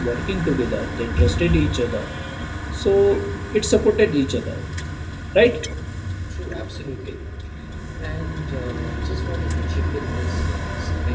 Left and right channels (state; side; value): identical; both; correlation 1.00